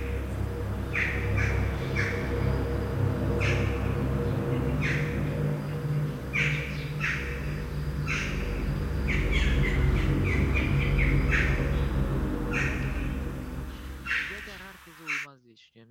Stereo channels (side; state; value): both; identical; correlation 1.00